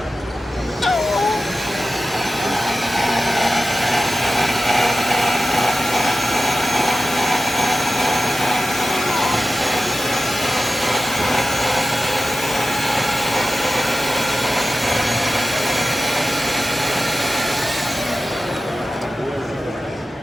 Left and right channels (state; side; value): normal; both; correlation 0.94